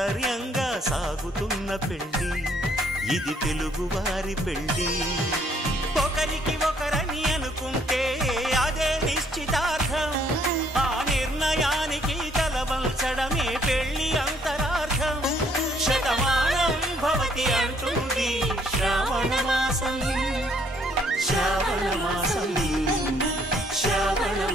సాగుతున్న పెళ్ళి ఇది తెలుగువారి పెళ్ళి ఒకరికి ఒకరని అనుకుంటే అదే నిశ్చితార్థం ఆ నిర్ణయానికి తలవంచడమే పెళ్లి అంతరార్థం శతమానం భవతి అంటుంది శ్రావణ మాసం శ్రావణ మాసం శ్రావణ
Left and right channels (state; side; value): normal; both; correlation 0.65